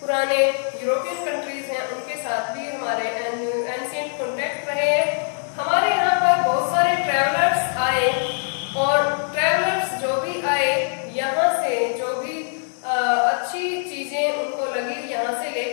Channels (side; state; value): right; silent; digital silence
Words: पुराने यूरोपियन कंट्रीज हैं उनके साथ भी हमारे एंशिएंट कॉन्टेक्ट रहे हैं। हमारे यहाँ पर बहुत सारे ट्रेवलर्स आए, और ट्रेवलर्स जो भी आए यहाँ से जो भी अच्छी चीजें उनको लगी यहाँ से